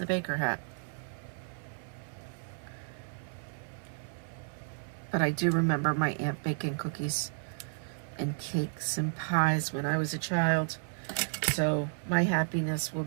baker hat. But I do remember my aunt baking cookies and cakes and pies when I was a child. So my happiness will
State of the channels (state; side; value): silent; left; 56 dB below the other